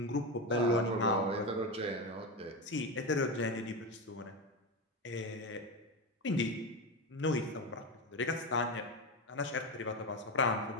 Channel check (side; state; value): both; normal; correlation 0.17